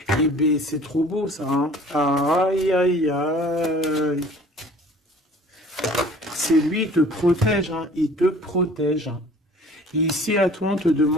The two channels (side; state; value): both; normal; correlation 0.49